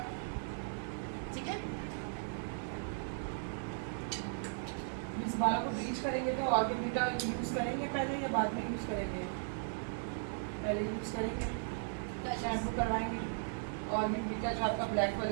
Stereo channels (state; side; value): silent; left; digital silence